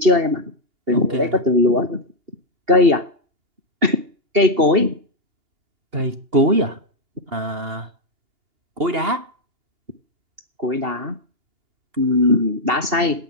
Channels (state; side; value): late; left; 2.7 ms